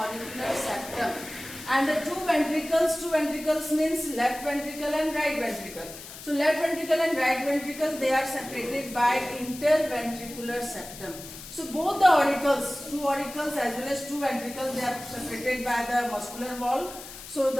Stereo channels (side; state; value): left; noise; hiss, 14 dB below the sound